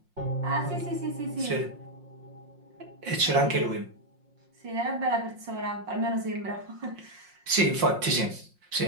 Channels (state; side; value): late; left; 5.6 ms